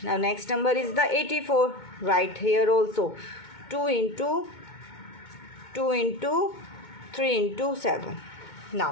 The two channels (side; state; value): right; late; 2.2 ms